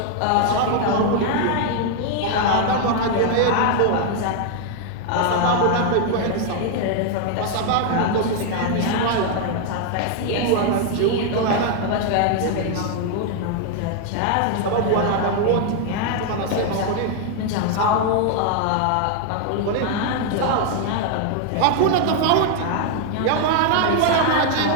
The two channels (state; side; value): different; both; correlation 0.00